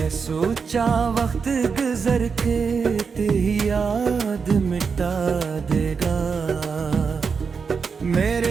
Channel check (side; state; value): left; quieter; 5.6 dB